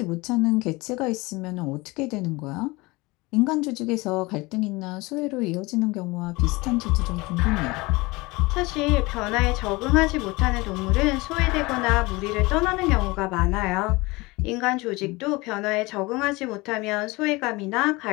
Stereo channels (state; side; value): quieter; right; 23.3 dB